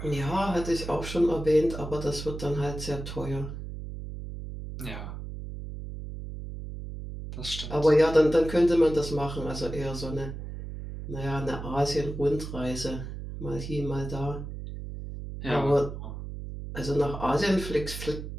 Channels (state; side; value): noise; right; hum, 8 dB below the sound